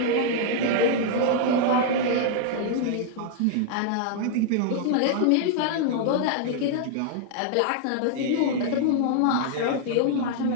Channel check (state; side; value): different; both; correlation 0.00